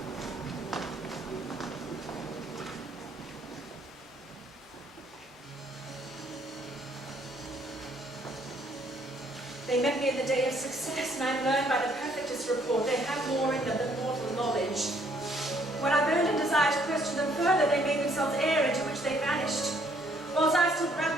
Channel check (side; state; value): both; normal; correlation 0.65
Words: They met me in the day of success, and I learned by the perfectest report they have more in them than mortal knowledge. When I burned a desire to question them further, whether they made themselves air into which they vanished. Whilst I stood